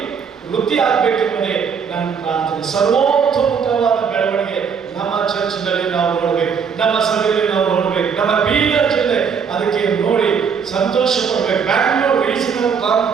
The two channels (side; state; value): left; quieter; 6.5 dB